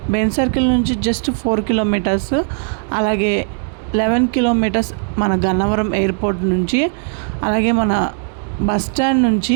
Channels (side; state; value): left; silent; 57 dB below the other